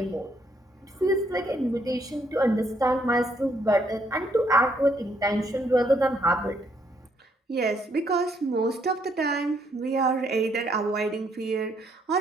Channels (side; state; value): both; normal; correlation 0.71